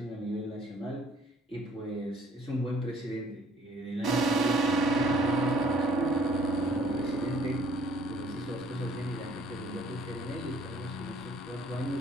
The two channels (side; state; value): both; normal; correlation 0.58